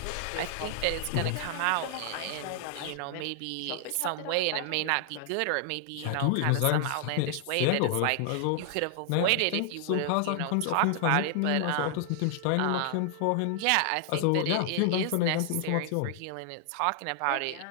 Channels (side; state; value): both; different; correlation 0.00